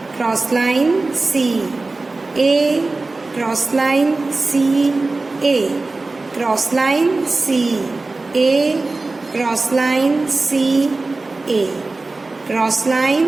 Cross line, C, A, cross line, C, A, cross line, C, A, cross line, C, A, cross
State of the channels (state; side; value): quieter; left; 3.4 dB